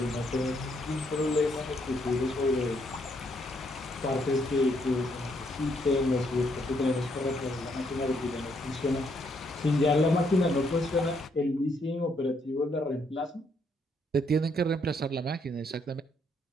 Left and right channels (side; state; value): both; normal; correlation 0.72